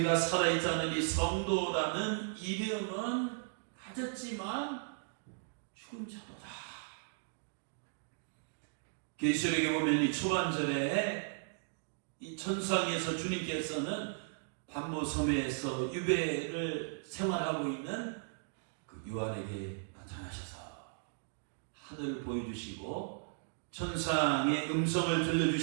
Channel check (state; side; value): silent; left; digital silence